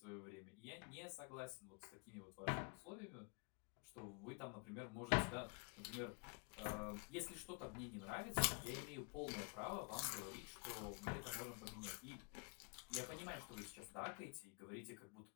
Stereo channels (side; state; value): right; quieter; 34.5 dB